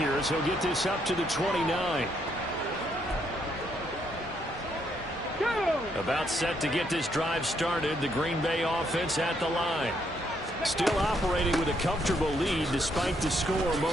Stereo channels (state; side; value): normal; both; correlation 0.73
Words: as he'll get this up to the 29. About set to get this drive started, the Green Bay offense at the line. Still operating with a comfortable lead despite the score a